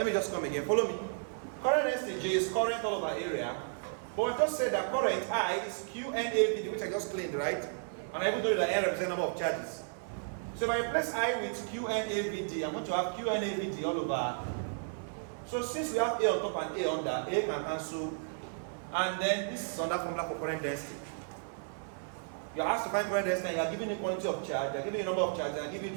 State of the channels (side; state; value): left; silent; digital silence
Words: me just come again. Follow me. Current density J is current all over area But I just said that current I is QNAVD, which I just claimed, right? And I even told you that N represents number of charges. So if I replace I with QNAVD, I'm going to have QNAVD all over. So since we have A on top and A under, A can cancel. And then this is under formula for current density. You're asked to find current density and you're given the quantity of charge, you're given the number of charges, and you're given